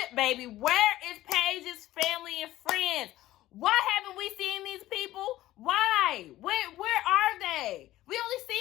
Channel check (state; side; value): quieter; right; 15.4 dB